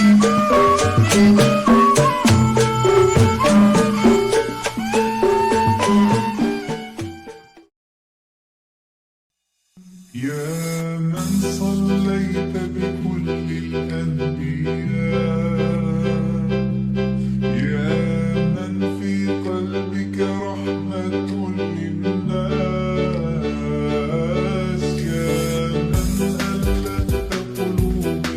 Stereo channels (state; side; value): identical; both; correlation 1.00